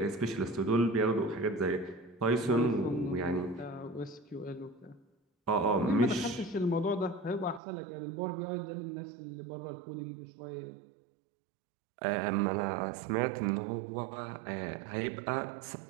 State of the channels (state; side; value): drops out; left; at 7.6 s